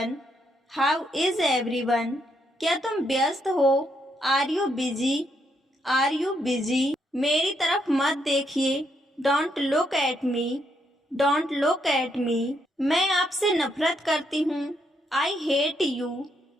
How is everyone? क्या तुम व्यस्त हो? Are you busy? Are you busy? मेरी तरफ मत देखिए। Don't look at me. Don't look at me. मैं आपसे नफरत करती हूँ। I hate you.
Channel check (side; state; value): both; normal; correlation 0.76